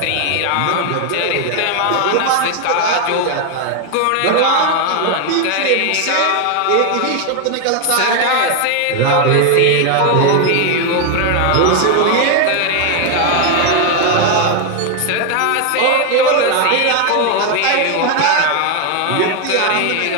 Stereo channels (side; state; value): both; different; correlation 0.01